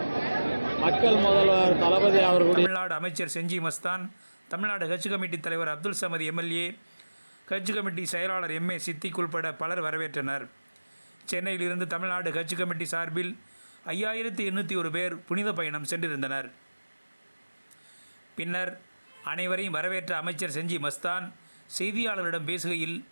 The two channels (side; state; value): both; inverted; correlation -1.00